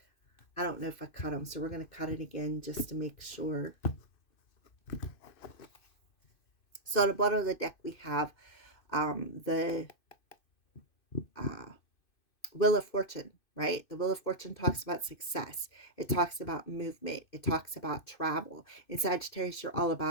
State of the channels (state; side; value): late; right; 2.6 ms